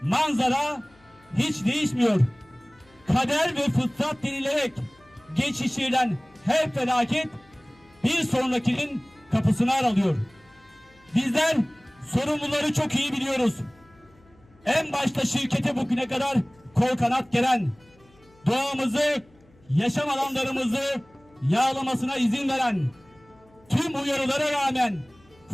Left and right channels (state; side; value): noise; left; hum, 30 dB below the sound